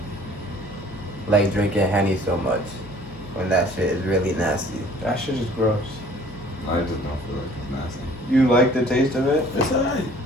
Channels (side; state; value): left; noise; hum, 19 dB below the sound